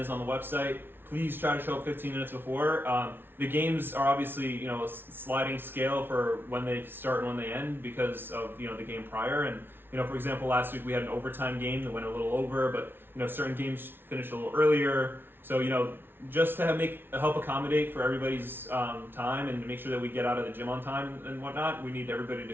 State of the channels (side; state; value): left; late; 0.11 ms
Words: on the website, please try to show up 15 minutes before. The games are obviously, a sliding scale for when they start and when they end because of, the game prior. And, for example, last week we had an overtime game that went a little over, but, certain games finished a little earlier. So, just to help accommodate for everybody's time and to make sure that we get out of the gym on time and whatnot, we need everybody